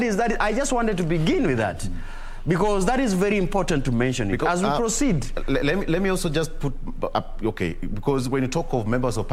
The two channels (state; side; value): identical; both; correlation 1.00